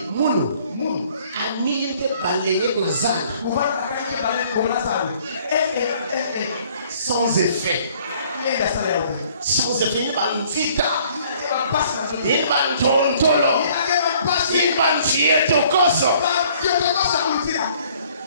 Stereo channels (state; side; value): inverted; both; correlation -0.59